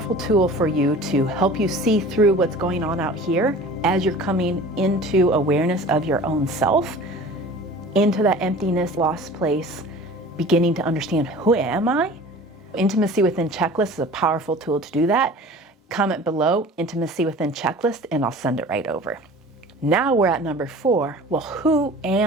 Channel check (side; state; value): both; normal; correlation 0.42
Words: tool for you to help you see through what's going on out here as you're coming into awareness of your own self, into that emptiness, lost place, beginning to understand, who am I? Intimacy Within Checklist is a powerful tool to do that. Comment below, Intimacy Within Checklist, and I'll send it right over. Now we're at number 4. Well, who